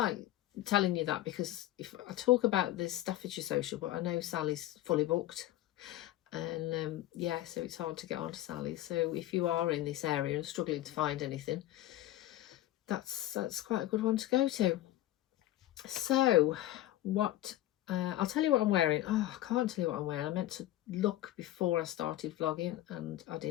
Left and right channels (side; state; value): right; quieter; 14.6 dB